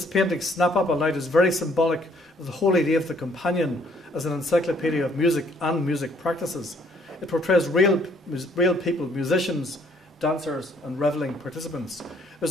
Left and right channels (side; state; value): both; normal; correlation 0.64